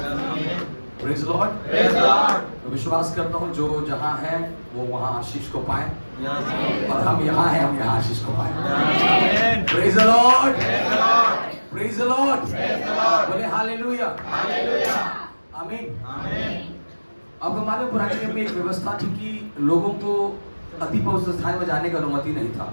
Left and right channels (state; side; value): inverted; both; correlation -1.00